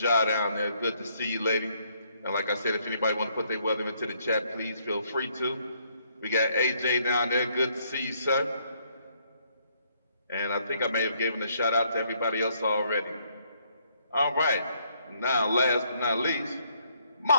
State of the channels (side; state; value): both; inverted; correlation -0.70